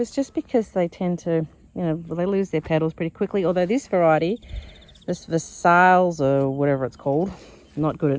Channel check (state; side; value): identical; both; correlation 1.00